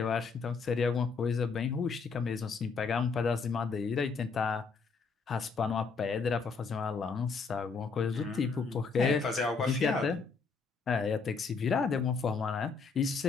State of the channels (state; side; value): quieter; right; 4.9 dB